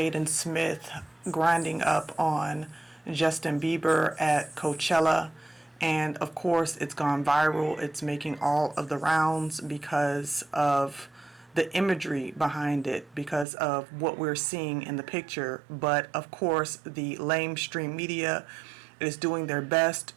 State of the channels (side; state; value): left; drops out; at 13.5 s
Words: Smith grinding up on Justin Bieber at Coachella. And of course, it's gone viral. It's making all of the rounds because of the imagery behind it, because of what we're seeing in the picture. But of course, the lamestream media is doing their best